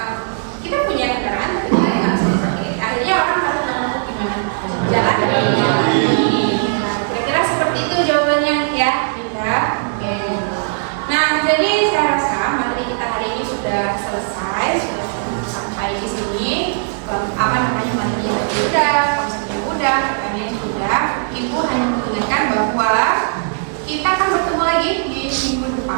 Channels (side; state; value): left; silent; 65 dB below the other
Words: Kita punya kendaraan, tapi kita nggak bisa dipakai. Akhirnya orang harus menemukan gimana jalan. Nah, kira-kira seperti itu jawabannya ya, Dinda. Oke. Nah, jadi saya rasa materi kita hari ini sudah selesai, sudah sampai di sini. Materinya udah, konsepnya udah, pertanyaannya sudah. Ibu hanya mengingatkan bahwa kita akan bertemu lagi di minggu